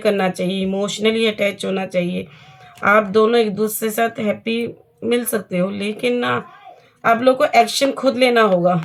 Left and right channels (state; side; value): identical; both; correlation 1.00